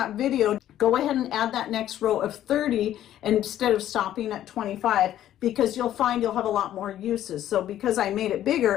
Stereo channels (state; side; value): quieter; right; 12.1 dB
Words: video, go ahead and add that next row of 30 instead of stopping at 25, because you'll find you'll have a lot more uses. So because I made it